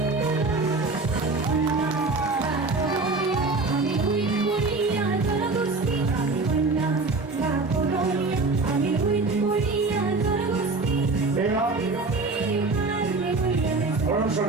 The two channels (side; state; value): left; quieter; 3.7 dB